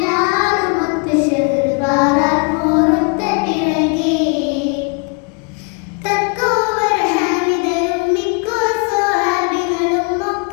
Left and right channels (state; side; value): quieter; right; 33.7 dB